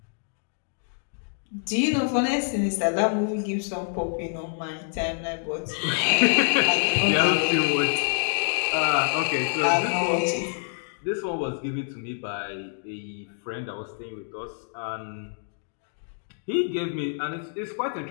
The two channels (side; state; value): right; silent; digital silence